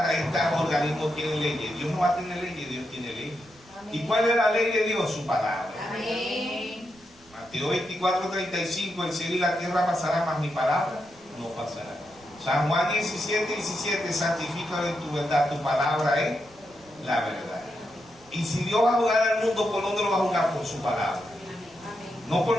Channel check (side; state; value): right; noise; rumble, 27 dB below the sound